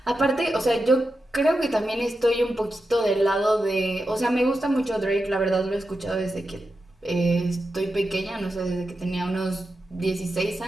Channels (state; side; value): normal; both; correlation 0.89